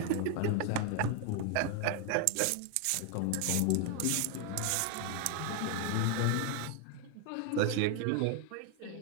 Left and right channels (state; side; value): different; both; correlation 0.01